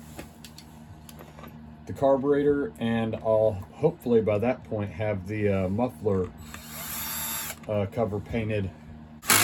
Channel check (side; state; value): both; identical; correlation 1.00